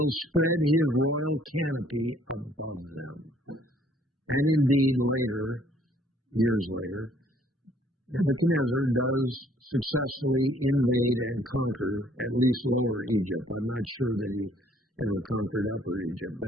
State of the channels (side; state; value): both; normal; correlation 0.61